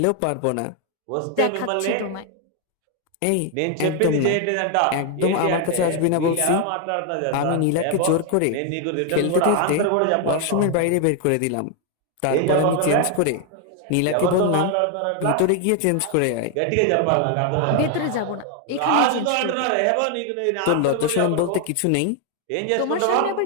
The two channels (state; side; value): different; both; correlation 0.01